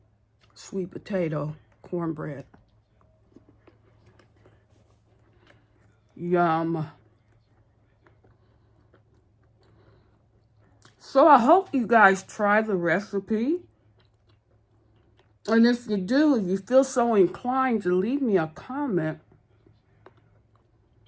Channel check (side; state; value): both; identical; correlation 1.00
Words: Sweet potato cornbread. Yum. So I hope you guys try the recipe. And if you do, if you feel so inclined to leave me a comment,